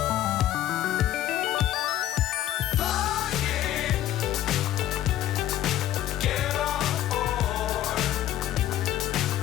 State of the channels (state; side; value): quieter; right; 12.9 dB